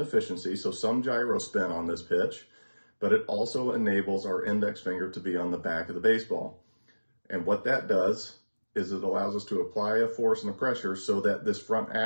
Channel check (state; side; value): inverted; both; correlation -1.00